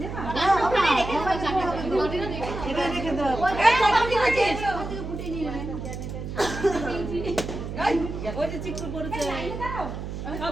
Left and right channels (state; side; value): noise; right; hum, 7 dB below the sound